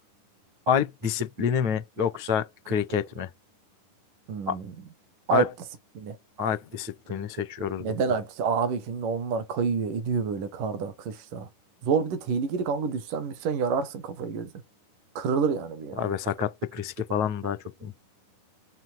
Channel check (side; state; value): left; late; 9.3 ms